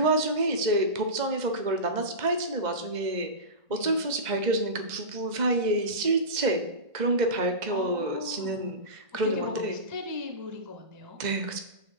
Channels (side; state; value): left; late; 2.0 ms